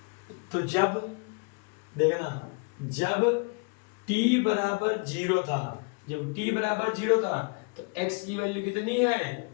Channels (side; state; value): right; quieter; 34.1 dB